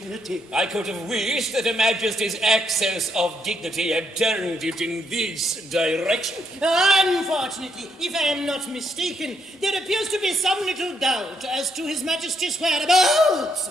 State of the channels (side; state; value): both; normal; correlation 0.75